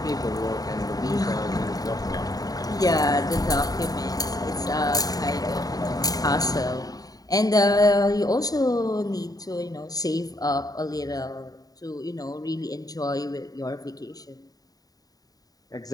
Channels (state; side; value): late; right; 0.18 ms